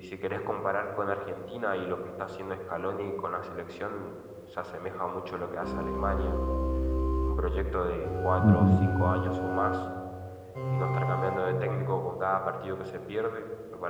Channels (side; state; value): both; identical; correlation 1.00